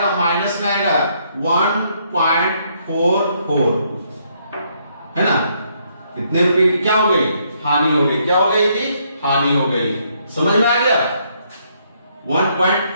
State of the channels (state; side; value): inverted; both; correlation -0.71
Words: माइनस में आएगा 1.44, है ना। कितने रुपए की क्या हो गई, हानि हो गई। क्या हो गई थी, हानि हो गई। समझ में आ गया,